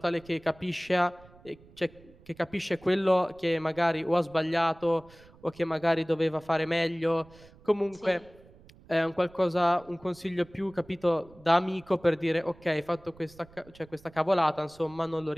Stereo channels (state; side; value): noise; right; rumble, 24 dB below the sound